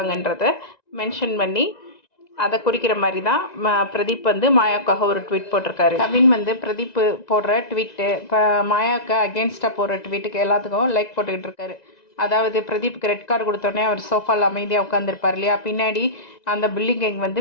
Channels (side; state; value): right; late; 1.9 ms